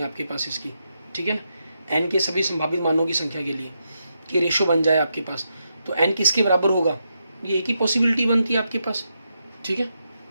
आपके पास इसकी, ठीक है ना। एन के सभी संभावित मानों की संख्या के लिए कि रेशो बन जाए आपके पास, तो एन किसके बराबर होगा, ये एक ही पॉसिबिलिटी बनती है आपके पास, ठीक है।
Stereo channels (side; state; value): both; inverted; correlation -0.83